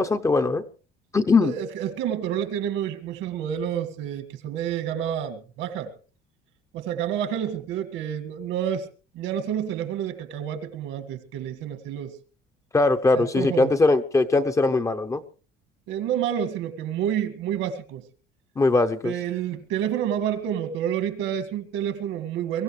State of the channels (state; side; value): normal; both; correlation 0.60